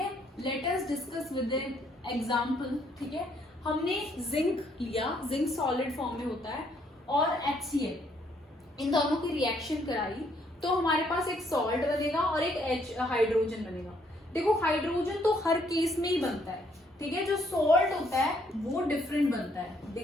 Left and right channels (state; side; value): normal; both; correlation 0.69